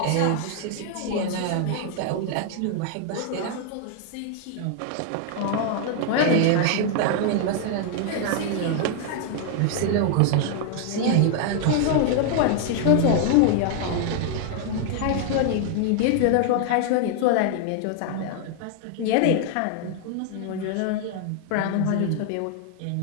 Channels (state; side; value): different; both; correlation 0.00